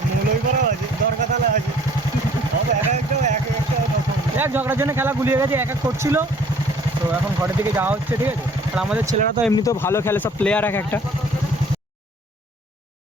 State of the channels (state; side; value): normal; both; correlation 0.55